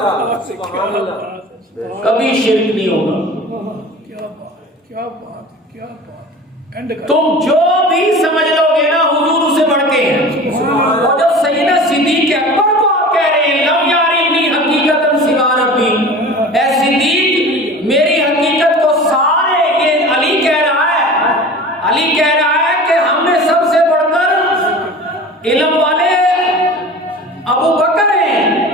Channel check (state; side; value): normal; both; correlation 0.38